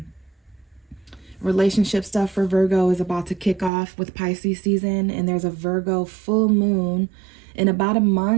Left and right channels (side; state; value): left; drops out; at 3.7 s